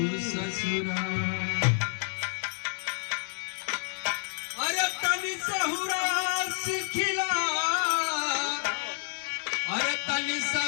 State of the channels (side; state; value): right; silent; digital silence